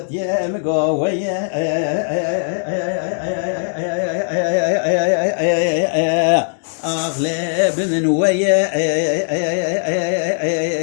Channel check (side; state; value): right; silent; digital silence